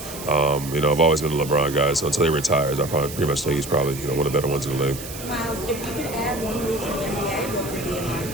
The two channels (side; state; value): right; noise; hiss, 12 dB below the sound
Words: I've always been a LeBron guy. So until he retires, I pretty much think he's probably, one of the better ones in the league. Myles, if you could add one rule to the NBA, what would it be in